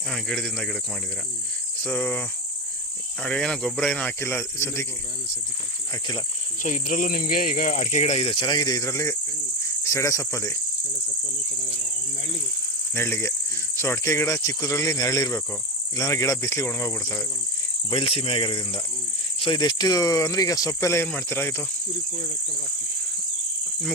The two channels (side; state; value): both; normal; correlation 0.17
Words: ಹಾಂ, ಗಿಡದಿಂದ ಗಿಡಕ್ಕೆ ಮಾಡಿದ್ದೀರಾ. ಸೊ ಏನೋ ಗೊಬ್ಬರ ಏನೋ ಹಾಕಿಲ್ಲ ಸದ್ಯಕ್ಕೆ? ಹಾಕಿಲ್ಲ. ಸೊ ಇದರಲ್ಲೂ ನಿಮಗೆ ಈಗ ಅಡಿಕೆ ಗಿಡ ಇದೆ, ಚೆನ್ನಾಗಿದೆ. ಇದರಲ್ಲಿ ಸೆಡೆ ಸೊಪ್ಪಲ್ಲಿ ನೆರಳಿಗೆ. ಸೊ ಅಡಿಕೆ ಗಿಡ ಚಿಕ್ಕದ್ರಲ್ಲಿ ನೆರಳಿರಬೇಕು, ಇಲ್ಲಾಂದ್ರೆ ಗಿಡ ಬಿಸಿಲಿಗೆ ಒಣಗೋಗ್ಬಿಡ್ತವೆ ಬಯಲು ಸೀಮೆ ಆಗಿರೋದ್ರಿಂದ. ಸೊ ಇದೆಷ್ಟು ಅಂದರೆ ಈಗ ಸೊಪ್ಪೆಲ್ಲ ಏನು ಮಾಡ್ತೀರಾ? ಇದು